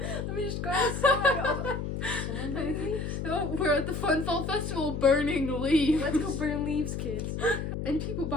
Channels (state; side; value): noise; left; hum, 4 dB below the sound